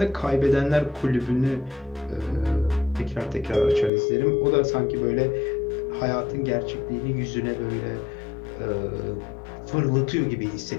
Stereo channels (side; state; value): right; drops out; at 3.9 s